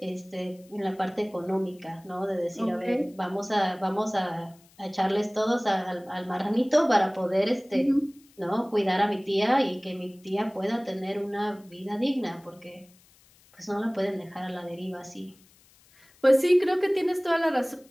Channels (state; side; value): noise; left; hiss, 29 dB below the sound